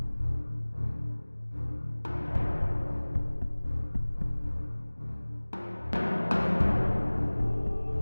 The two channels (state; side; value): inverted; both; correlation -1.00